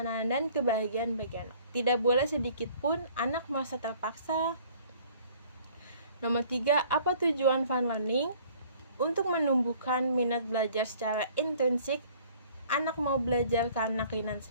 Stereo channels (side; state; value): both; inverted; correlation -0.54